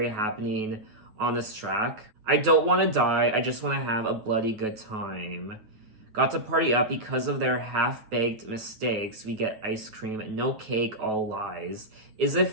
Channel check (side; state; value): left; late; 9.2 ms